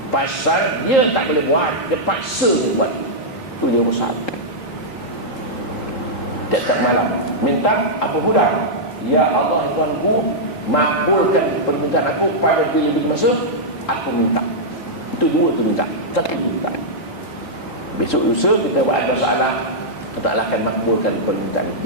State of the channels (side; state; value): right; late; 3.7 ms